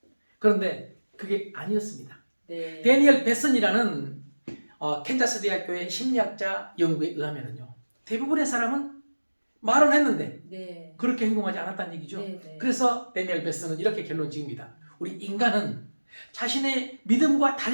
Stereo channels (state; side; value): inverted; both; correlation -1.00